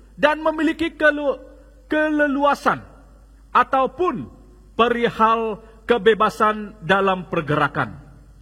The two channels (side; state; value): both; identical; correlation 1.00